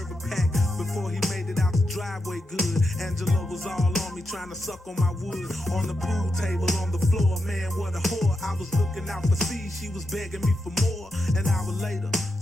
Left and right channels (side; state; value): both; normal; correlation 0.86